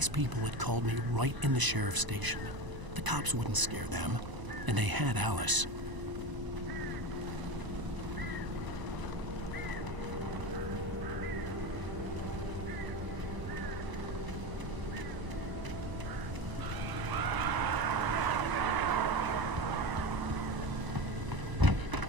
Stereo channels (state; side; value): late; left; 1.0 ms